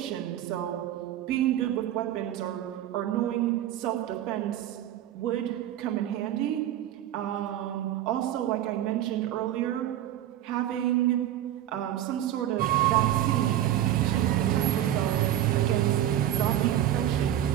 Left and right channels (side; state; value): left; quieter; 12.1 dB